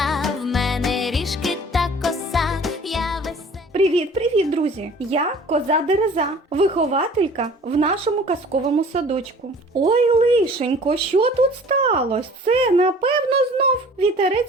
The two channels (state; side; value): normal; both; correlation 0.48